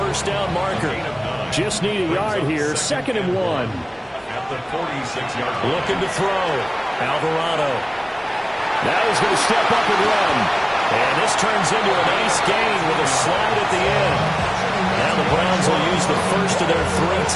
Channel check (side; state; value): both; identical; correlation 1.00